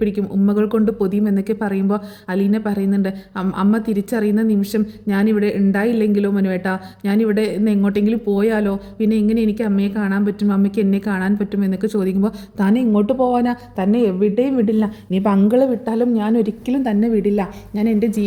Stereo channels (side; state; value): both; identical; correlation 1.00